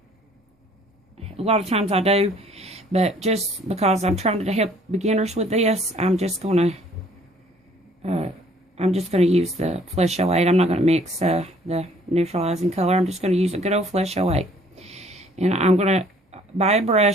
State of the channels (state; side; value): normal; both; correlation 0.58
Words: A lot of times I do. But just because I'm trying to help beginners with this, I'm just going to use the Flesh 08. I'm not going to mix the neutralizing color. I'm just going to use a good old Flesh 08. And I'm going to buy a